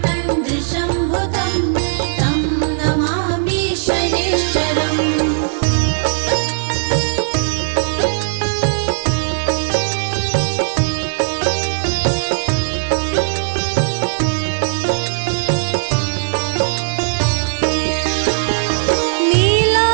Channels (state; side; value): silent; left; 56 dB below the other